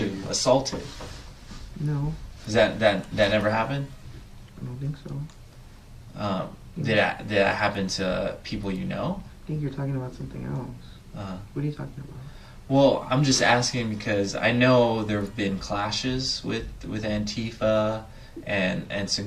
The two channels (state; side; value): identical; both; correlation 1.00